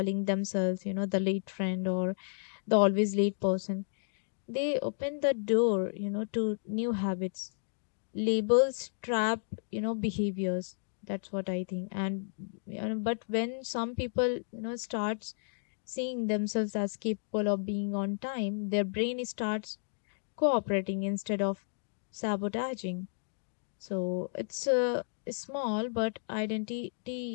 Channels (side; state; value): right; silent; digital silence